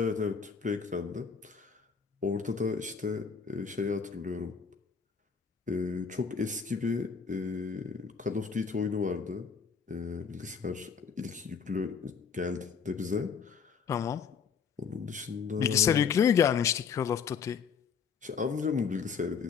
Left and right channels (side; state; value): right; quieter; 6.2 dB